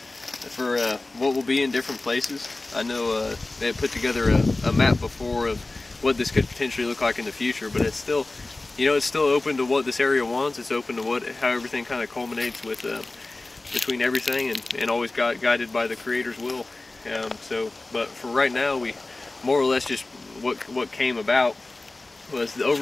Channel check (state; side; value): quieter; right; 3.1 dB